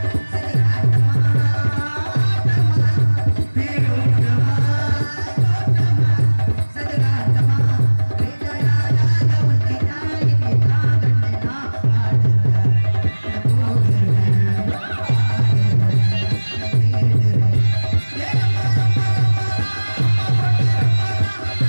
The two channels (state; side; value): inverted; both; correlation -1.00